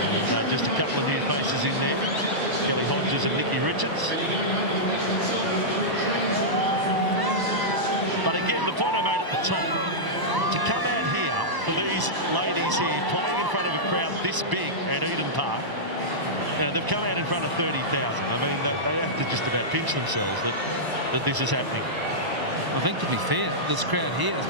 And, just a couple of new faces in there, Kelly Hodges and Nikki Richards. But again, the point I made at the top, to come out here for these ladies here playing in front of a crowd this big at Eden Park, you know, they've come out in front of 30,000. I mean, they have to just about pinch themselves that this is happening. I think, to be fair, this crowd here has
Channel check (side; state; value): left; late; 1.0 ms